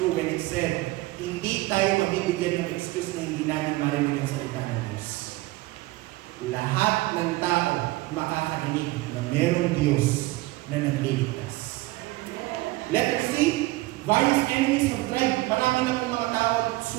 when it said, hindi tayo mabibigyan ng excuse na hindi namin marinig ang salita ng Diyos. Lahat ng tao makakarinig na merong Diyos na nagliligtas. Letter C, various enemies have tried. Marami na pong mga tao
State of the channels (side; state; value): left; quieter; 19.8 dB